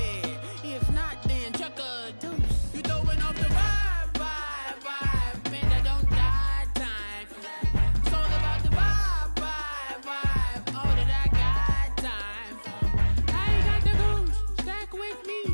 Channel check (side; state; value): both; inverted; correlation -1.00